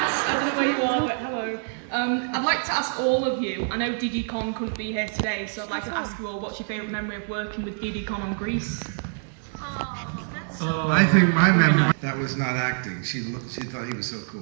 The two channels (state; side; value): silent; left; digital silence